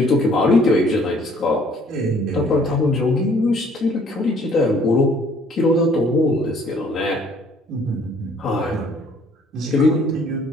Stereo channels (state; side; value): normal; both; correlation 0.59